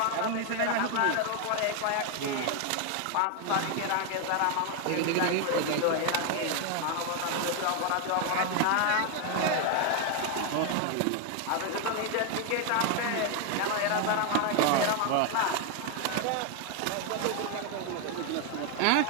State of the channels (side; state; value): both; different; correlation 0.01